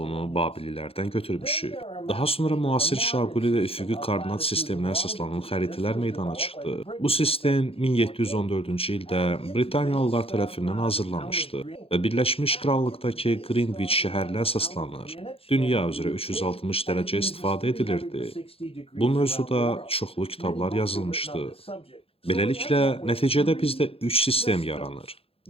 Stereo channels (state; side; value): late; right; 0.27 ms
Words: Babililərdən götürmüşük. Daha sonra müasir şaquli və üfüqi koordinat sisteminə əsaslanan xəritələr meydana çıxdı. Bu sistem 1714-cü ildə Britaniyalılar tərəfindən hazırlanmışdı və Birləşmiş Krallıqdakı Greenwich şəhərinə əsaslanır. Dünya üzrə 360 dərəcə istifadə edilirdi. Bu mövzuda çoxlu kitablar yazılmışdı. Beləliklə, nəticədə bizdə 3 sistem yaranır.